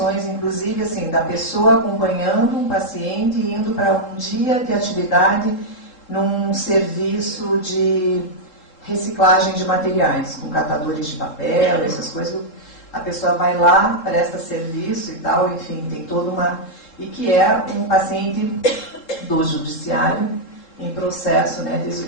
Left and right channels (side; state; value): right; late; 3.7 ms